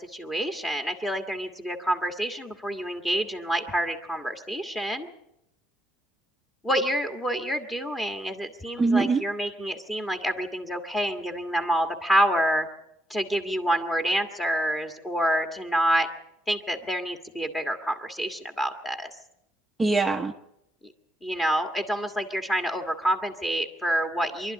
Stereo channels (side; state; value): both; normal; correlation 0.80